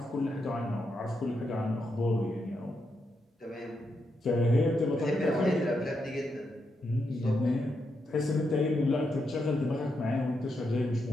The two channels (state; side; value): normal; both; correlation 0.83